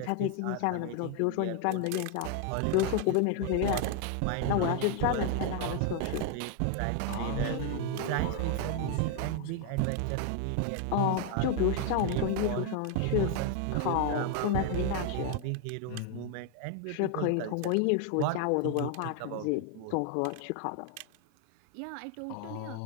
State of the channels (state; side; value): different; both; correlation 0.01